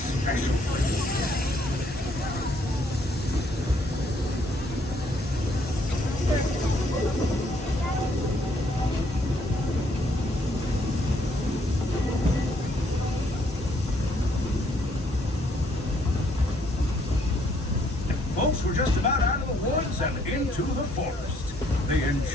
place. Folks, we're just about out of the woods and into the forest. The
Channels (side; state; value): both; normal; correlation 0.68